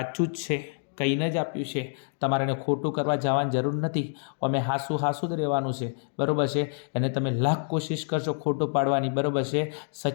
જ છે. કહીને જ આપ્યું છે. તમારે એને ખોટું કરવા જવાની જરૂર નથી. અમે હાસું જ રહેવાનું છે બરાબર છે. એને તમે લાખ કોશિશ કરશો ખોટું પાડવાની બરાબર છે.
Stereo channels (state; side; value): silent; right; 57 dB below the other